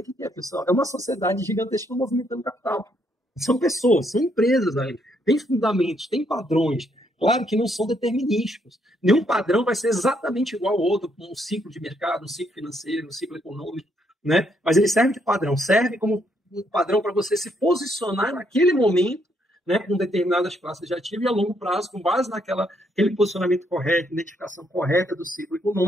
o que é, pessoal? É uma sociedade gigantesca movimentando capital. São pessoas, são empresas aí. Tem fundamentos, tem padrões. Claro que não são determinísticos. Nenhum padrão vai ser exatamente igual ao outro, como um ciclo de mercado, um ciclo financeiro, um ciclo econômico, né? Mas ele serve de padrão, serve como um padrão para você se posicionar naquele momento, né, com determinadas classes de ativo e a longo prazo, com base naquele posicionamento correto, identificação correta do ciclo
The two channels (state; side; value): normal; both; correlation 0.73